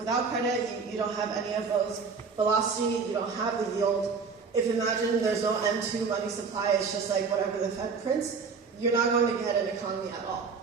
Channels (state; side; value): quieter; left; 5.2 dB